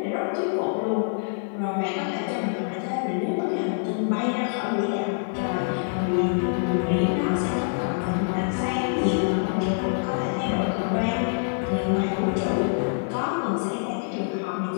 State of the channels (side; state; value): right; silent; digital silence